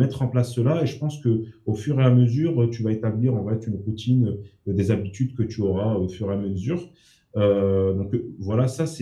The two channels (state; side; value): identical; both; correlation 1.00